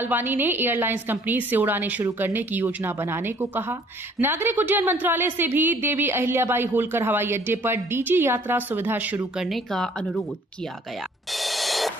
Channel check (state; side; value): normal; both; correlation 0.58